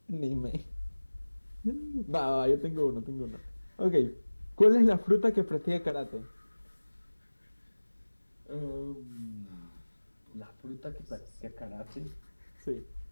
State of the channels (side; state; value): both; inverted; correlation -1.00